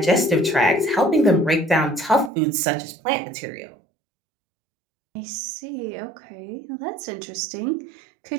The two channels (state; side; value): drops out; left; at 2.3 s